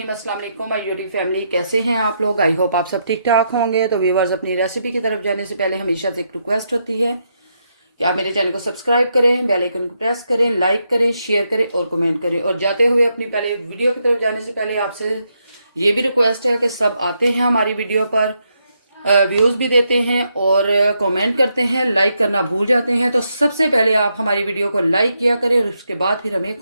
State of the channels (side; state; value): both; inverted; correlation -0.80